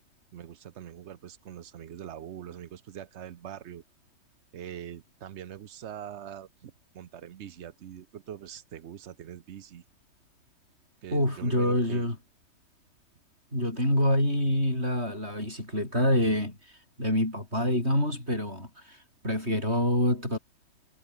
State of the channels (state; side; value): late; left; 3.2 ms